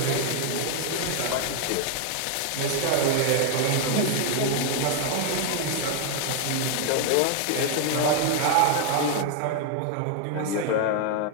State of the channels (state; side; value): different; both; correlation 0.00